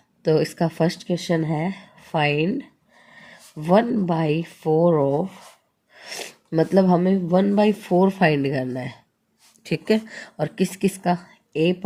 तो इसका फर्स्ट क्वेश्चन है फाइंड 1/4 ऑफ, मतलब हमें 1/4 फाइंड करना है। ठीक है, और किस किस का? ए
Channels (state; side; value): identical; both; correlation 1.00